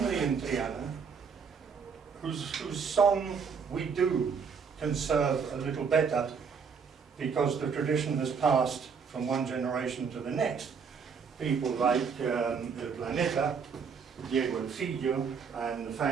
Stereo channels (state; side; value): quieter; left; 6.0 dB